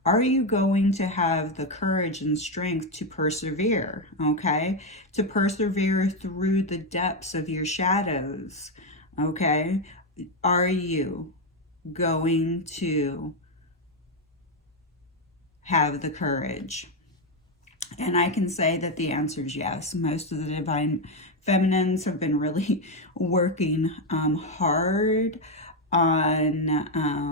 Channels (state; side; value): normal; both; correlation 0.06